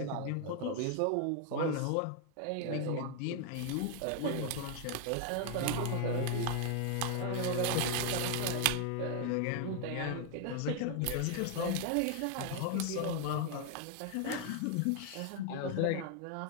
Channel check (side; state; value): both; different; correlation 0.00